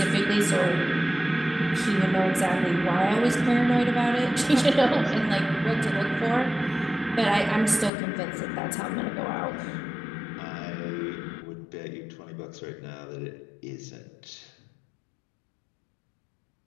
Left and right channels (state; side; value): drops out; right; at 7.9 s